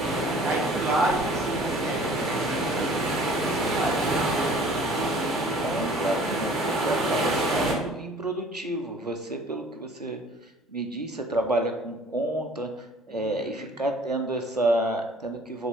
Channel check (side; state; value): both; normal; correlation 0.51